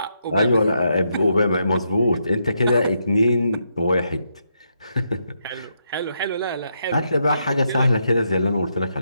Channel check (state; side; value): inverted; both; correlation -0.80